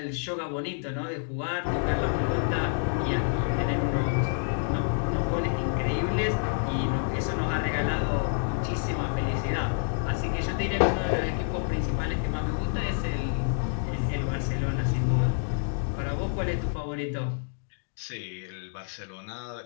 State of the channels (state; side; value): silent; right; digital silence